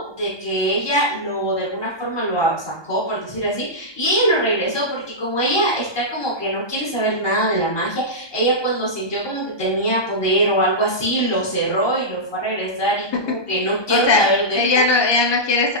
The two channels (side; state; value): right; late; 1.2 ms